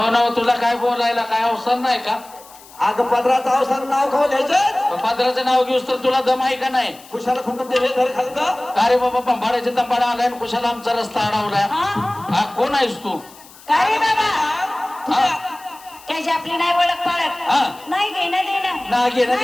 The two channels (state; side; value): noise; left; hiss, 22 dB below the sound